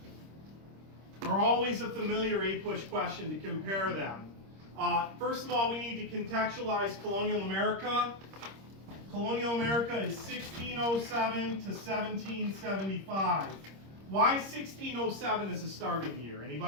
are always a familiar 8-push question to compare them. First of all, we need to contextualize colonial America. Colonial America is 1607 to 1775. Why 1607 is a starting year?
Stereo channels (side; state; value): left; late; 26 ms